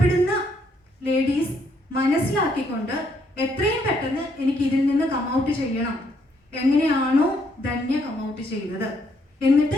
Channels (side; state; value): both; normal; correlation 0.72